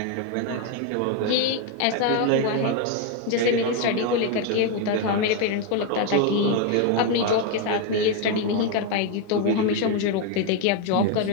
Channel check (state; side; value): different; both; correlation 0.02